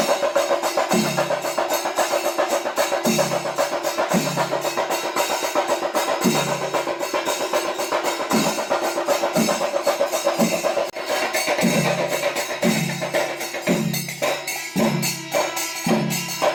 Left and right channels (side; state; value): both; identical; correlation 1.00